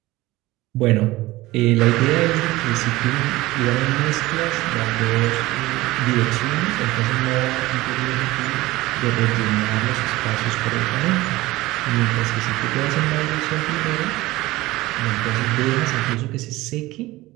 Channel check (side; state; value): left; quieter; 18.8 dB